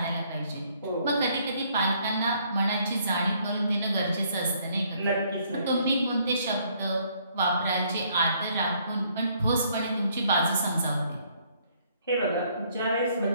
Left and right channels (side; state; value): both; inverted; correlation -0.66